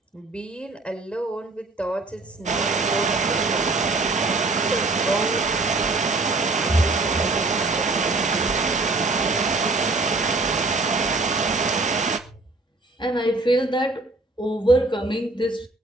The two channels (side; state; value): left; quieter; 3.3 dB